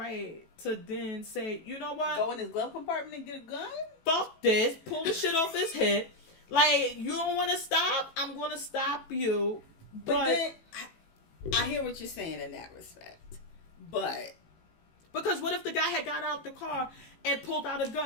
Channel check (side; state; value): right; late; 18 ms